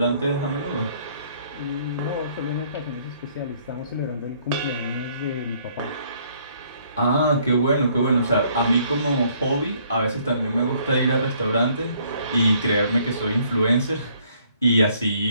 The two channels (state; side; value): inverted; both; correlation -0.64